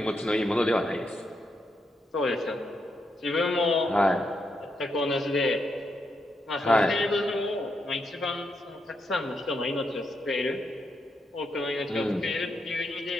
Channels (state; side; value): normal; both; correlation 0.81